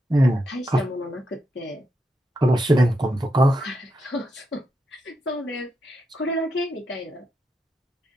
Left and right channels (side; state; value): both; normal; correlation 0.84